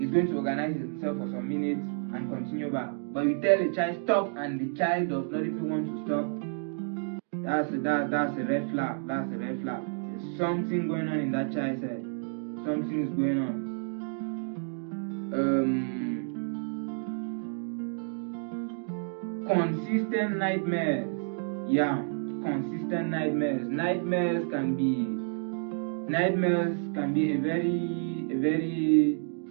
he's going to organize himself for some minutes and continue back. But you tell the child stop and the child does not even want to stop. That's a red flag. That's a red flag. There's something going on in that child's head. Something is going on. Consistent nightmares. Yeah, consistent nightmares. Nightmares can be a very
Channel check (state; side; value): silent; left; 58 dB below the other